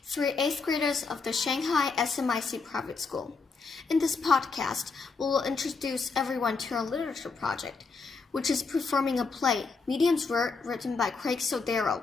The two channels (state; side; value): quieter; right; 4.5 dB